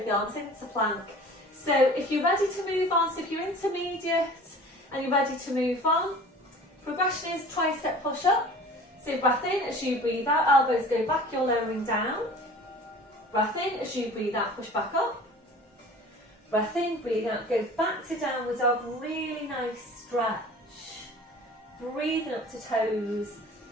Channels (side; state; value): both; normal; correlation 0.44